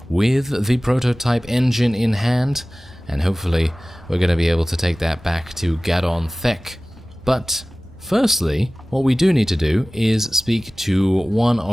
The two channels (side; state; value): both; normal; correlation 0.98